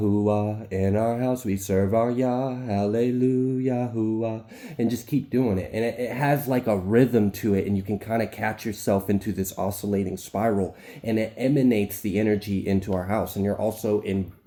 In our house we serve our Yah, hallelujah, hooah. And just keep doing it. And it has like a rhythm to it, and you can kind of catch yourself into this oscillating spiral, and it emanates the energy into our house. And you're also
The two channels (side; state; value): both; identical; correlation 1.00